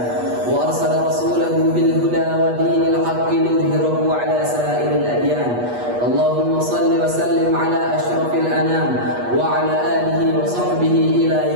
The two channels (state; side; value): late; left; 8.3 ms